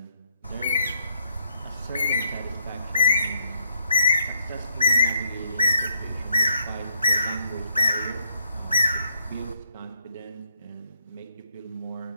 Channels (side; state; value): both; inverted; correlation -0.74